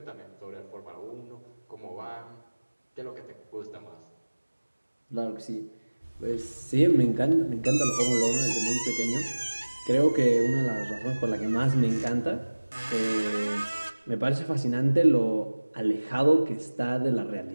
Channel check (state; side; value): inverted; both; correlation -1.00